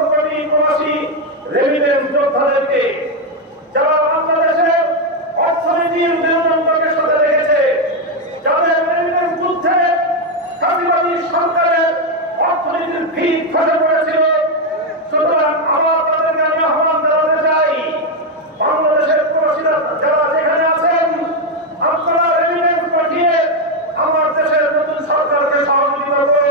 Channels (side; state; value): both; normal; correlation 0.05